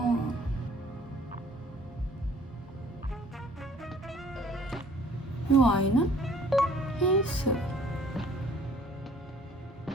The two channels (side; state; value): both; normal; correlation 0.56